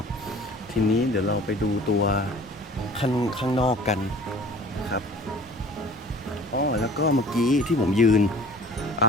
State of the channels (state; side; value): normal; both; correlation 0.45